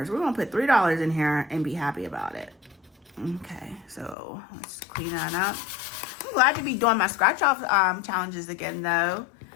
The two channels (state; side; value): drops out; right; at 4.2 s